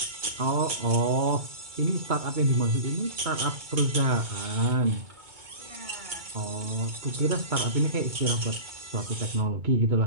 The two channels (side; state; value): left; late; 2.2 ms